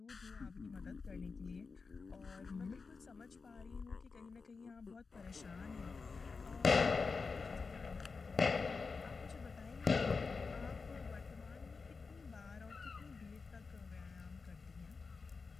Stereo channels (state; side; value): quieter; right; 4.6 dB